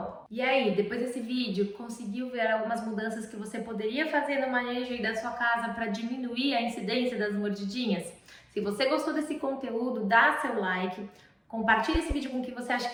E aí, depois desse vídeo, conseguiu ver algumas mudanças que você poderia fazer no manejo aí da sua casa para diminuir a incidência das mordidinhas? Se você gostou desse conteúdo, dá seu like, compartilhe esse vídeo com quem você acha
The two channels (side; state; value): both; identical; correlation 1.00